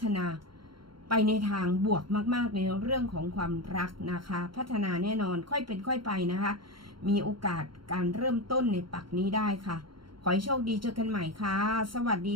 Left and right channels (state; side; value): late; left; 0.73 ms